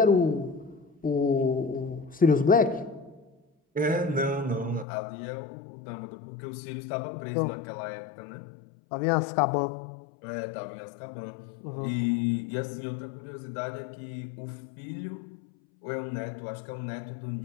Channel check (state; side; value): drops out; right; at 4.9 s